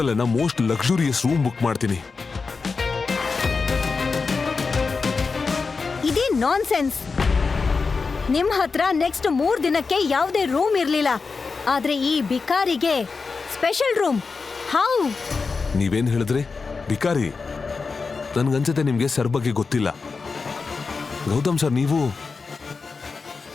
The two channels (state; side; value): quieter; right; 4.6 dB